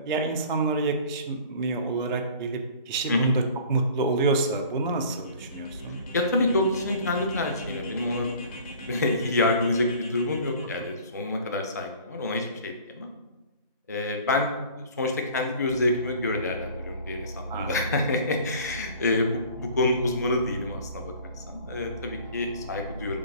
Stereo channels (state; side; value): inverted; both; correlation -0.47